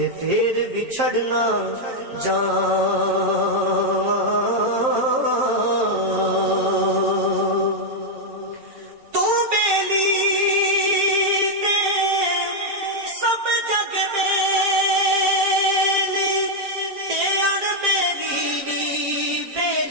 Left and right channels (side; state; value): left; late; 7.5 ms